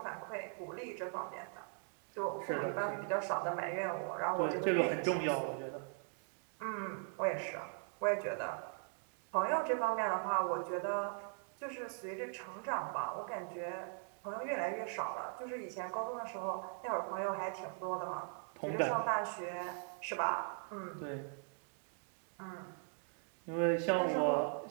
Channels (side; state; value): left; silent; 51 dB below the other